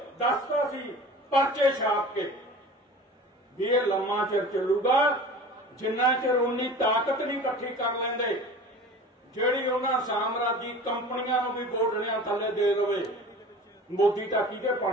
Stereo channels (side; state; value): both; normal; correlation 0.39